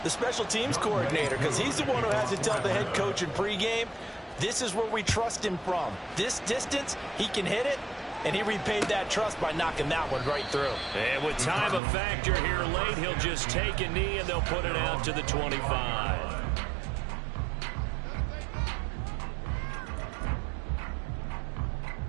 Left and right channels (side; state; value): left; drops out; at 11.8 s